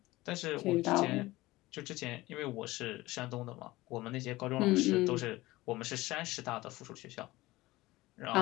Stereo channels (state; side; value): quieter; right; 19.0 dB